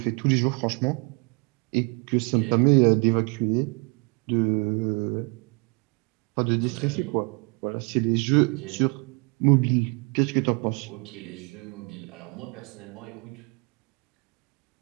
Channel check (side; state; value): left; quieter; 32.8 dB